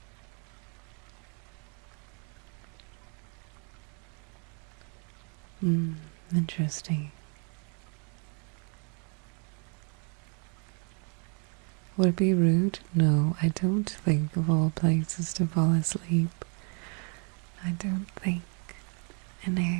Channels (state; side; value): quieter; left; 37.4 dB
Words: Interesting. Would it be rude? No, I don't think of all places to fall asleep. I don't think an